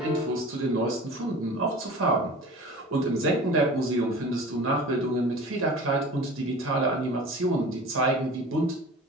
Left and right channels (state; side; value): normal; both; correlation 0.39